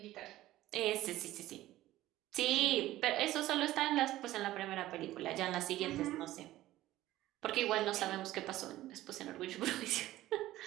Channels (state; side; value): quieter; left; 15.5 dB